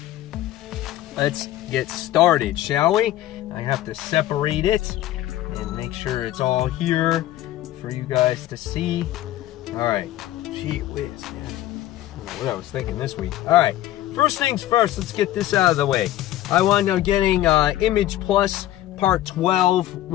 let's get started, shall we? I have to separate it and make sure it's all here for you guys to see. All right, gee whiz, man. I don't know what I was thinking this week. All right, first things first, let's get this out of the way. I wound up getting Image Plus Part 12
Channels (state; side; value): quieter; right; 14.2 dB